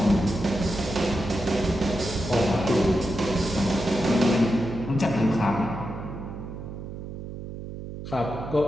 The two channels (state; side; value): noise; right; hum, 9 dB below the sound